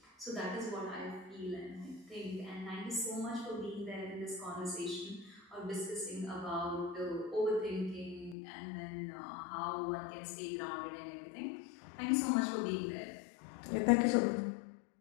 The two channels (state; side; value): drops out; right; at 8.3 s